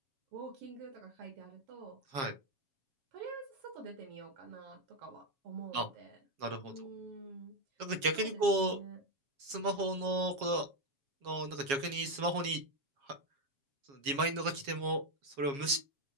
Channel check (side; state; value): left; late; 7.3 ms